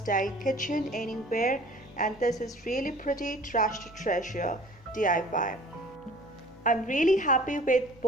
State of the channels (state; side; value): normal; both; correlation 0.48